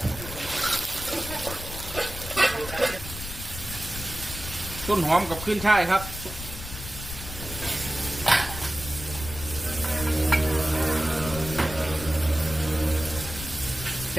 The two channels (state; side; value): noise; left; rumble, 10 dB below the sound